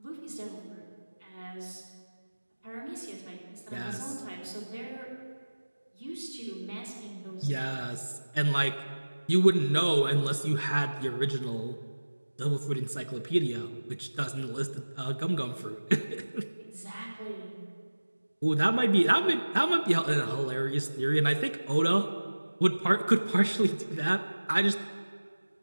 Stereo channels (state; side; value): inverted; both; correlation -1.00